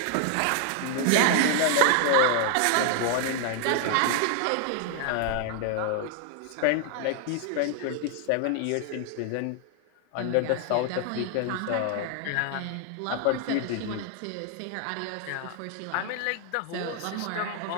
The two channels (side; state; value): both; different; correlation 0.00